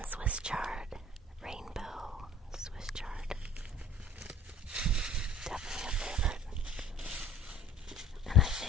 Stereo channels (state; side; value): normal; both; correlation 0.47